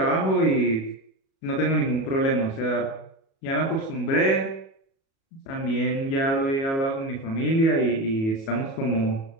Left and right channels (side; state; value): right; late; 37 ms